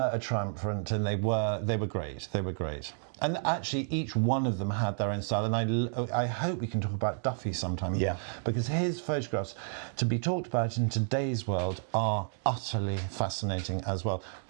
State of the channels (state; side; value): silent; left; 57 dB below the other